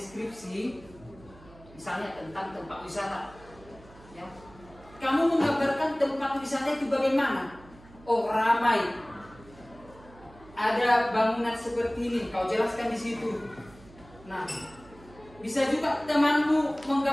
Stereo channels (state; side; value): noise; right; hum, 22 dB below the sound